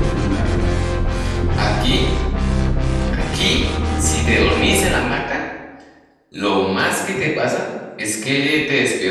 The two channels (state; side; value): identical; both; correlation 1.00